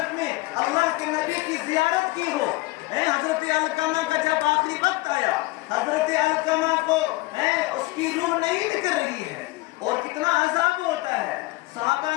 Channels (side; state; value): right; quieter; 21.4 dB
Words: میں اللہ کے نبی کی زیارت کی ہو۔ حضرت علقمہ کا جب آخری وقت آیا، حضرت علقمہ کو اس کی روح نہیں نکل رہی ہے، اور کتنا عذاب ہوتا ہے۔ صحابہ